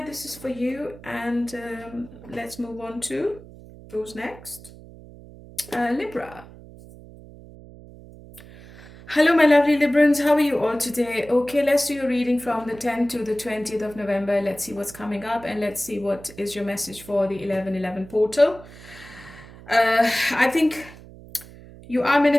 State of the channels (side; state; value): right; noise; hum, 19 dB below the sound